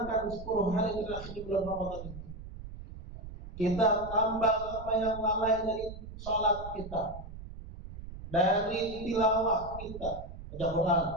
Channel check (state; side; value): noise; right; rumble, 12 dB below the sound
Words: 10 hari terakhir di bulan Ramadan itu, kita tambah apa yang lalai dari sholat kita, dari tilawah kita, baca Quran,